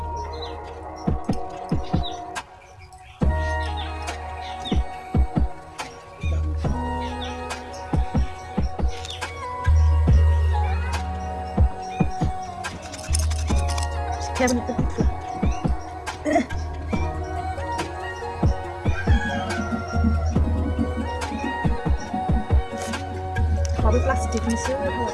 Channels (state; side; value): identical; both; correlation 1.00